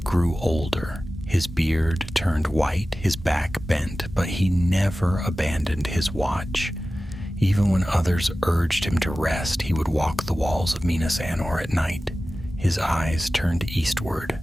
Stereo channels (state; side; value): normal; both; correlation 0.96